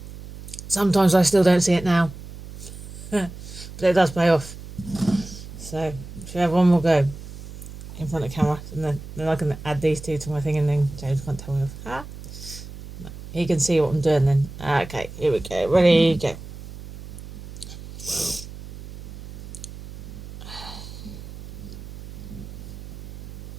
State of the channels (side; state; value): right; noise; hum, 13 dB below the sound